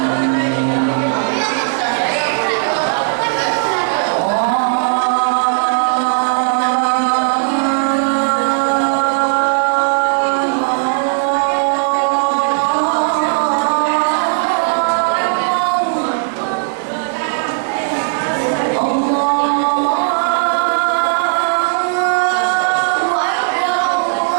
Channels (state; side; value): silent; left; digital silence